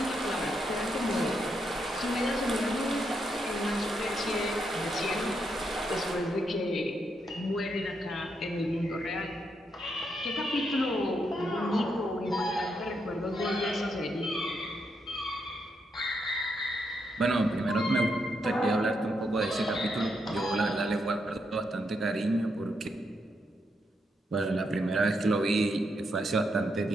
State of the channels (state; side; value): normal; both; correlation 0.80